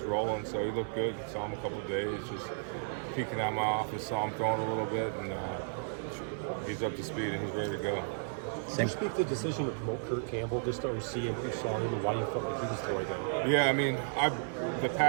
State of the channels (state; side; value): silent; left; digital silence